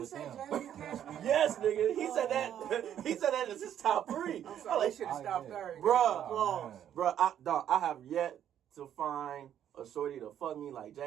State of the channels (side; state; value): left; quieter; 10.1 dB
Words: with say them. Jasmine Cashmere? Yes, nigga. He said that. He said that as his top 3. I'm sorry, they should have Oh, stopped yeah. there. Bruh. Oh, Bro, I have yet to find a shorty to fuck me like